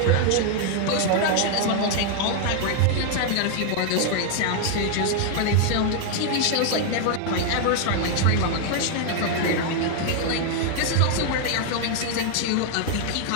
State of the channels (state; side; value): different; both; correlation 0.00